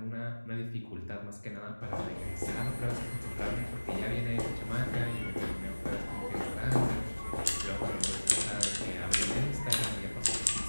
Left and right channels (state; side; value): inverted; both; correlation -1.00